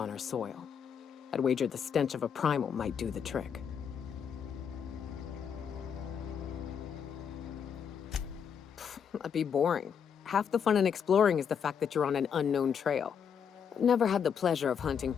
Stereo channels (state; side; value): quieter; right; 7.4 dB